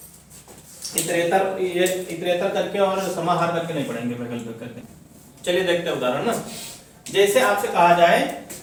इतरेतर, ये इतरेतर करके और समाहार करके नहीं पढ़ेंगे, वैकल्पिक करके। चलिए देखते हैं उदाहरण ना। जैसे आपसे कहा जाए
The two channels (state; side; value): identical; both; correlation 1.00